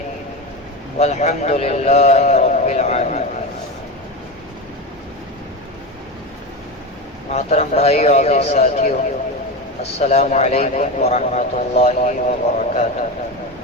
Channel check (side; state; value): both; normal; correlation 0.20